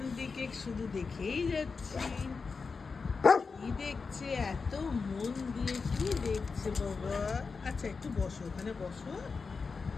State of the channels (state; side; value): quieter; right; 4.8 dB